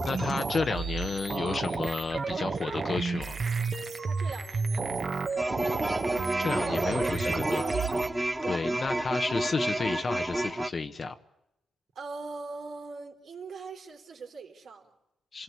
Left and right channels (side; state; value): both; normal; correlation 0.89